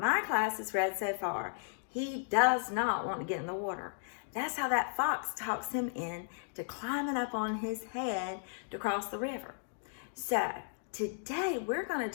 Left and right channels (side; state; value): right; silent; digital silence